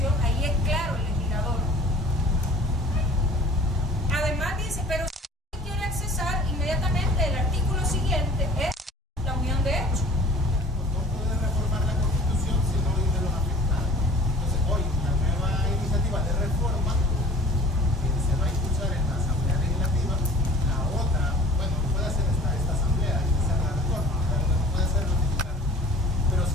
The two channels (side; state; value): both; normal; correlation 0.47